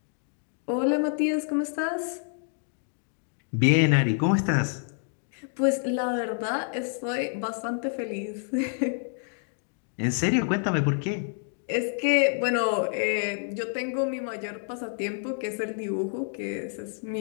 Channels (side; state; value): right; silent; 59 dB below the other